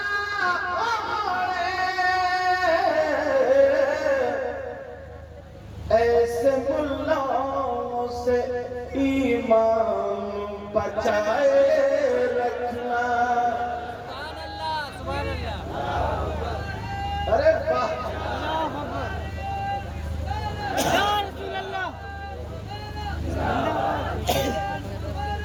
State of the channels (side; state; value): both; identical; correlation 1.00